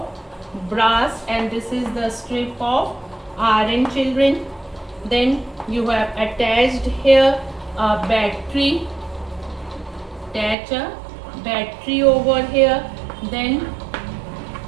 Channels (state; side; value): drops out; left; at 10.6 s